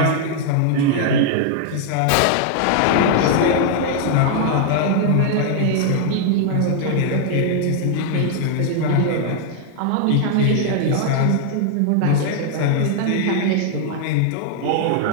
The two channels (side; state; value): both; different; correlation 0.00